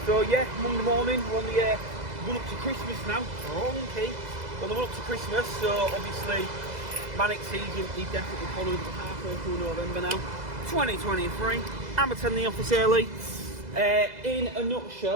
So yeah, Monday morning, we're on the run up to Christmas now. Wrong-key. On the run up to Christmas, so obviously manic season is definitely following halfway through November now. 2023. I'm attending the office early. In a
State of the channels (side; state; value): left; late; 2.0 ms